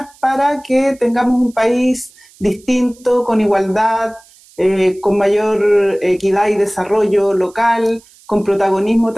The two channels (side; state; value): right; noise; hiss, 27 dB below the sound